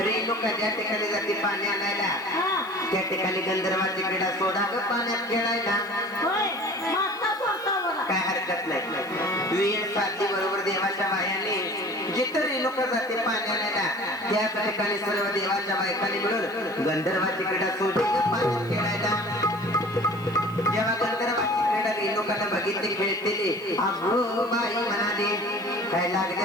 ज्या ठिकाणी जाते पाणी आणायला हा त्या ठिकाणी गंधर्वाची क्रीडा सोडा ग पाण्यात खेळायला होय माता सोडता बघा काय हरकत नाही वेळ साधली बरोबर देवाच्या बायाने जिथं रेणुका जाते पाणी आणायला त्याच ठिकाणी सर्व देवाच्या बायकांनी मिळून गंधर्वाची क्रीडा सोडली ग पाण्यात खेळायला जेव्हा गंधर्वाची क्रीडा रेणुकाला बघितली खेळतेली अगो बाई म्हणाली काय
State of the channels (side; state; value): right; noise; hiss, 25 dB below the sound